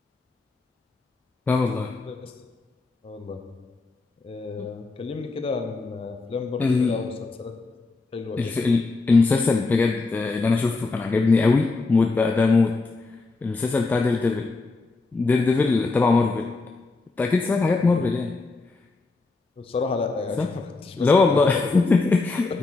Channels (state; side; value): quieter; right; 3.7 dB